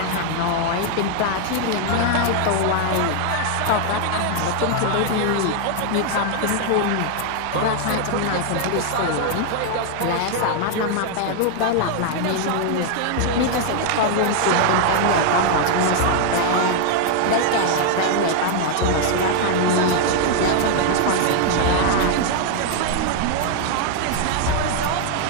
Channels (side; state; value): both; different; correlation 0.00